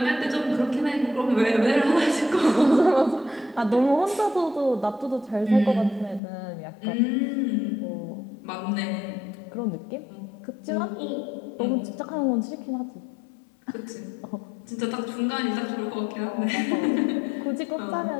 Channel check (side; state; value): right; drops out; at 6.2 s